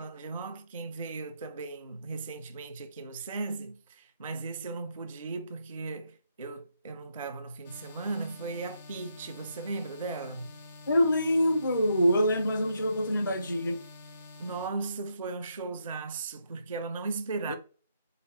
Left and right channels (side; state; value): both; inverted; correlation -0.78